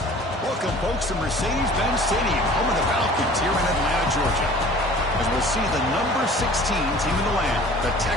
Welcome, folks, to Mercedes-Benz Stadium, home of the Falcons here in Atlanta, Georgia, as we'll see the number 16 team in the land, the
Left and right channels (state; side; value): normal; both; correlation 0.47